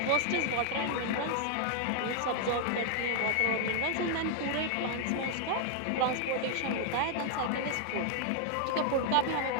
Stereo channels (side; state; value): both; different; correlation 0.00